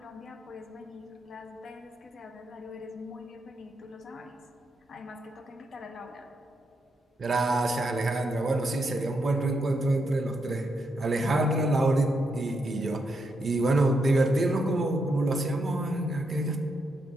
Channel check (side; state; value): both; normal; correlation 0.81